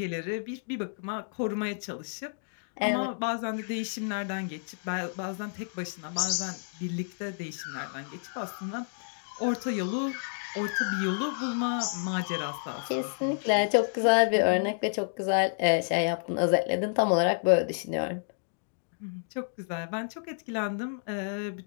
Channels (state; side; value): silent; right; digital silence